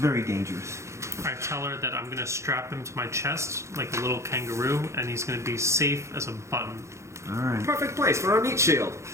dangerous. I tell her that I'm going to strap him to my chest like a little kangaroo and he's going to be safe as a button. All right. Perfect place for our meat shield.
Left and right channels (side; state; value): left; late; 0.14 ms